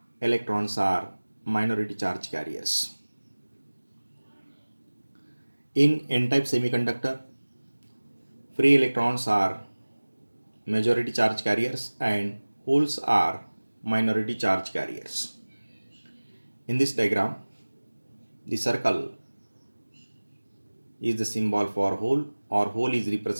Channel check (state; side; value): inverted; both; correlation -1.00